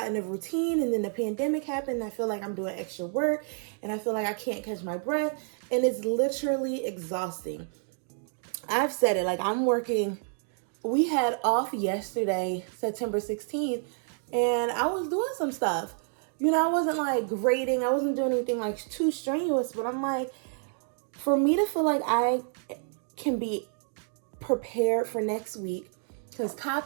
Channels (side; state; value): left; silent; 56 dB below the other